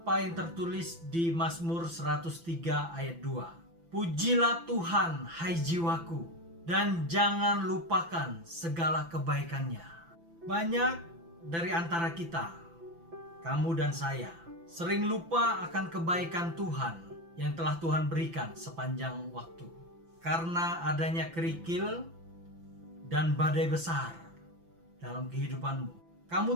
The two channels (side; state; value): left; late; 5.9 ms